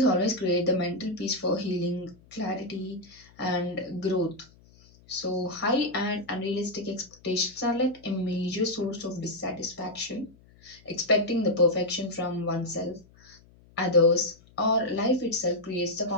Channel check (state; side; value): noise; left; hum, 27 dB below the sound